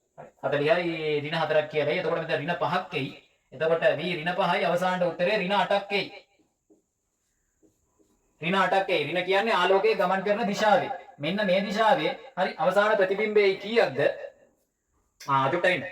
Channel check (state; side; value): identical; both; correlation 1.00